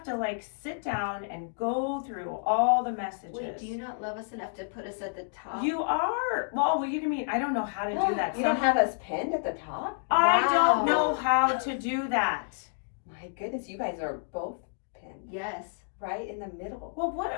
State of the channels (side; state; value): right; silent; digital silence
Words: to like sit down and go through all the messages. Wait, do you not love us enough to put us at the top? You are. Well, what do you mean? I don't know how to do that. You don't have us pinned at the top? I don't Wow. know how to do that. My goodness, you guys are both pinned Yes. right in the middle. Well,